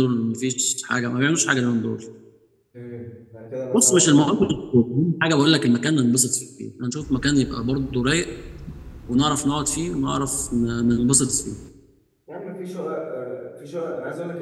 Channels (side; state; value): both; identical; correlation 1.00